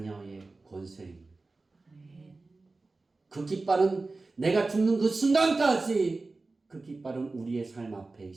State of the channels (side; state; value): left; quieter; 3.5 dB